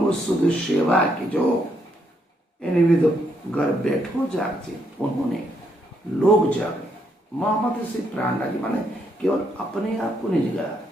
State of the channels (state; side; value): normal; both; correlation 0.75